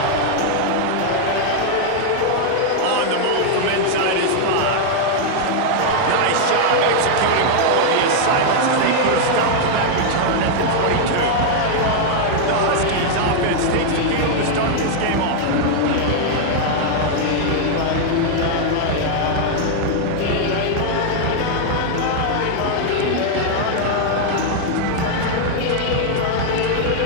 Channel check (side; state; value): both; different; correlation 0.00